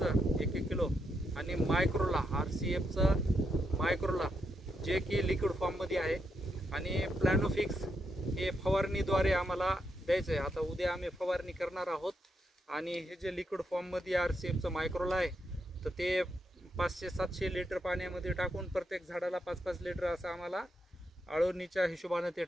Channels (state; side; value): normal; both; correlation 0.81